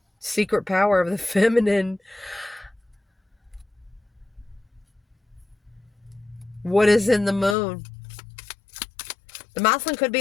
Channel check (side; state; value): right; drops out; at 7.6 s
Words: Secret power of the feminine. What is in the moon? The masculine could